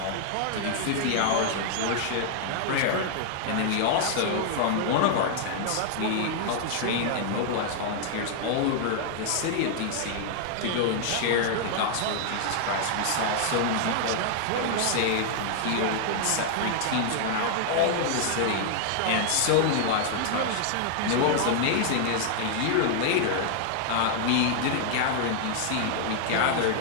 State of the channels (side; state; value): both; different; correlation -0.01